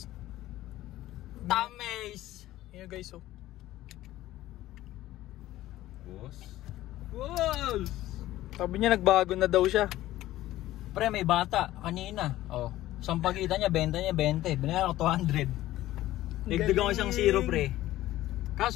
Tames! Ayan guys, oh. Boss? Boss! Sabi niya nagbago na daw siya. Pre, may bata kanina. Oh, isang pagkita niya, benta niya 20. Binayaran ko 200. Nagdagang ko isang 0, pre.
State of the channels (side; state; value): right; quieter; 15.2 dB